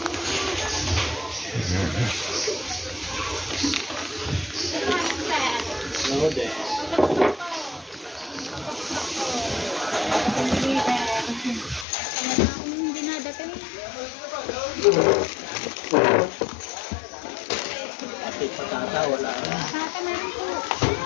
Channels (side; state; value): right; drops out; at 11.9 s